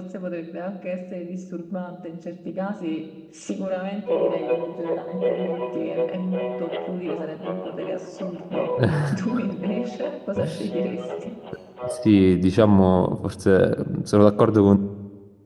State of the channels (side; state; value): both; identical; correlation 1.00